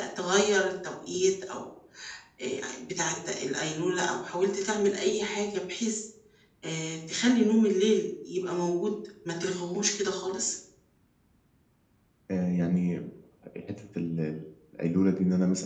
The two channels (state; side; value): identical; both; correlation 1.00